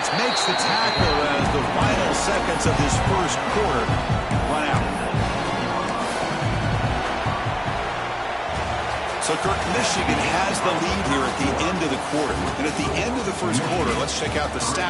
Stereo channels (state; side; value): identical; both; correlation 1.00